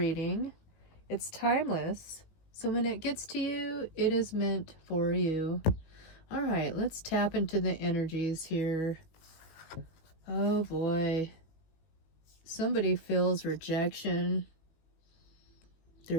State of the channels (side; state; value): right; late; 18 ms